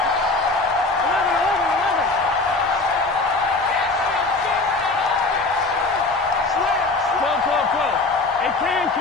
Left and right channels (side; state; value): right; quieter; 3.4 dB